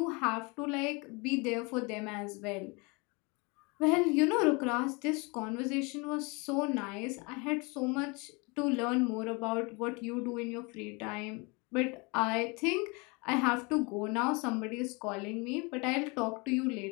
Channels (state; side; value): quieter; right; 28.8 dB